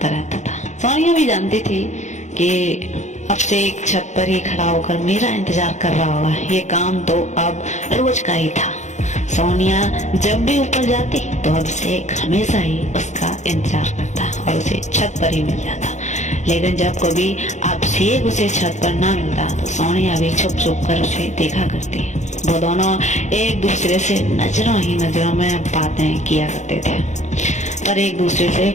रहता था। सोनिया भी जानती थी कि अब से एक छत पर ही खड़ा होकर मेरा इंतजार कर रहा होगा। ये काम तो अब रोज का ही था। सोनिया जब भी ऊपर जाती तो अभिषेक हमेशा ही उसका इंतजार करता और उसे छत पर ही मिल जाता। लेकिन जब कभी अभिषेक उसे छत पर ना मिलता तो सोनिया भी छुप छुप कर उसे देखा करती। वो दोनों एक दूसरे से नजरों ही नजरों में बातें किया करते थे, पर एक दूसरे से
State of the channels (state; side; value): late; right; 0.34 ms